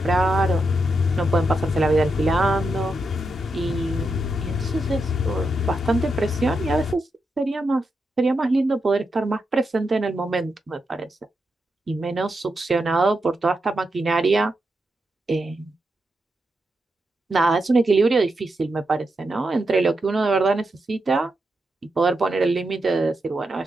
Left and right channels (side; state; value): both; normal; correlation 0.85